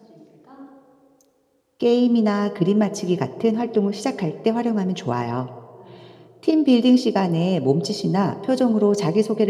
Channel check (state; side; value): identical; both; correlation 1.00